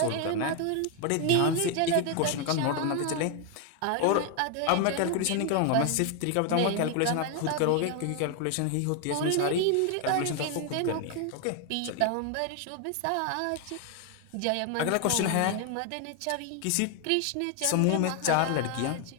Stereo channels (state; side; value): different; both; correlation 0.00